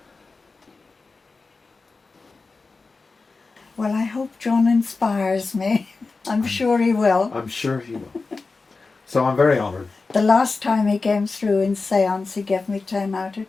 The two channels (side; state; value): right; quieter; 4.0 dB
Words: Well, I hope John inspires me. I'm sure he will. I'm sure he will. So I'm very honoured. The last time he came through in seance, he gave me 10 out